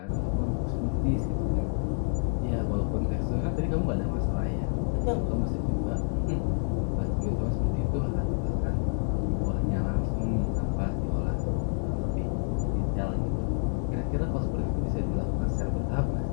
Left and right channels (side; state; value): right; silent; digital silence